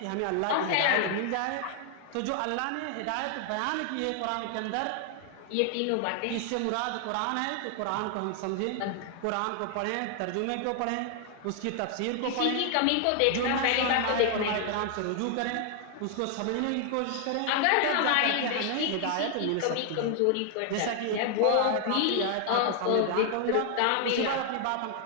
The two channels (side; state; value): both; different; correlation 0.00